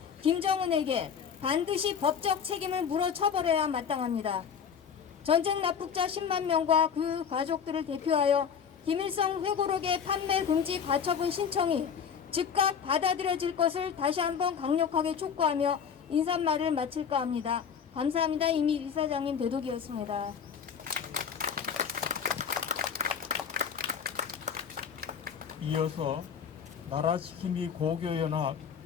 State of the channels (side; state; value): right; quieter; 7.2 dB